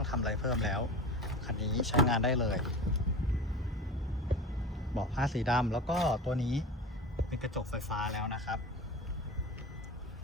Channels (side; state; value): both; normal; correlation 0.31